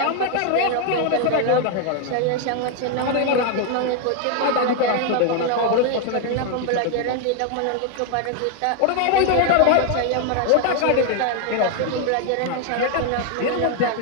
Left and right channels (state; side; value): different; both; correlation 0.01